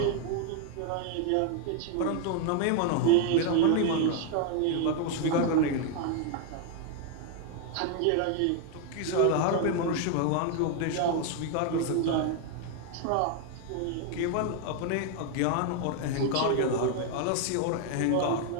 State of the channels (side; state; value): both; different; correlation 0.00